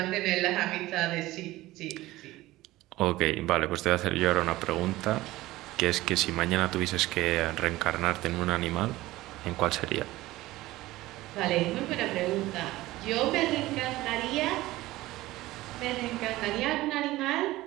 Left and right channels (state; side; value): quieter; left; 17.6 dB